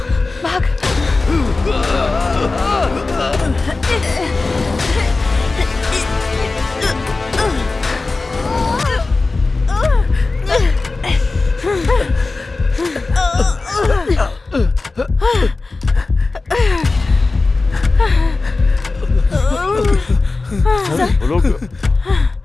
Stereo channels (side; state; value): right; quieter; 3.6 dB